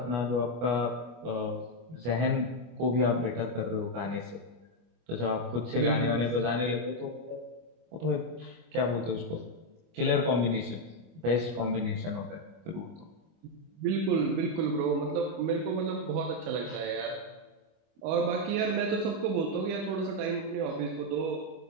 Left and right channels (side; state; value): left; late; 25 ms